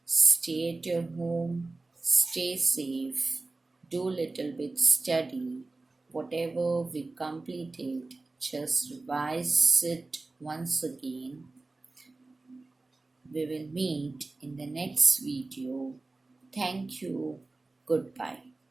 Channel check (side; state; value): left; quieter; 3.3 dB